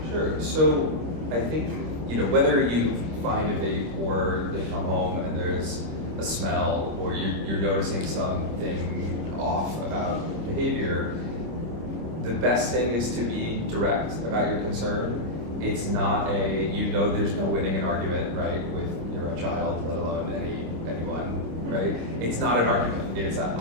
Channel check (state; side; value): late; left; 25 ms